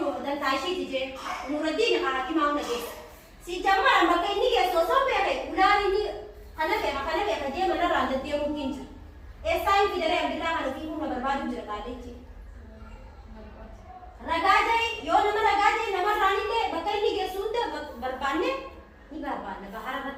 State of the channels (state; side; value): identical; both; correlation 1.00